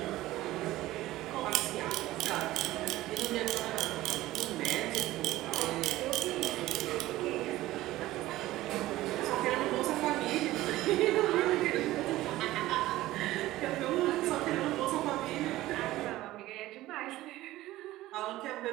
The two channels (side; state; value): left; quieter; 16.4 dB